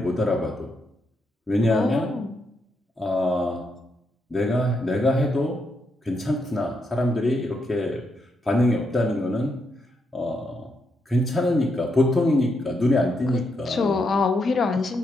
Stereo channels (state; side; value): normal; both; correlation 0.80